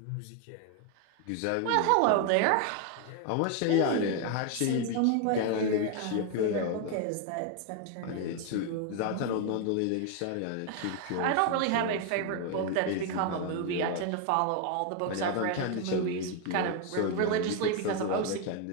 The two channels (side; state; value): both; different; correlation 0.01